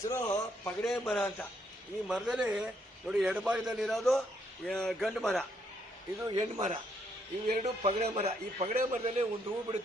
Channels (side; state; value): both; normal; correlation 0.73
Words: ಪಗಡೆ ಮರ ಅಂತ. ಈ ಮರದಲ್ಲಿ ನೋಡಿ, ಎಡಭಾಗದಲ್ಲಿರೋದು ಗಂಡು ಮರ, ಇದು ಹೆಣ್ಣು ಮರ, ಇವೆರಡು ಪಗಡೆ ಮರ. ಈ ಪಗಡೆ ಮರದಲ್ಲಿ ಒಂದು ಹೂ